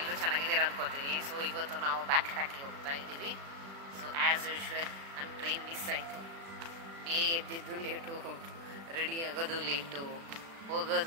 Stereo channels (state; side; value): late; left; 36 ms